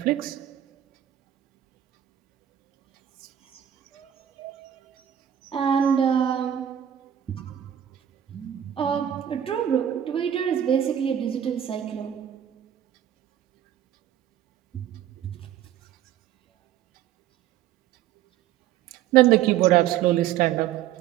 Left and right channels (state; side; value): quieter; left; 10.6 dB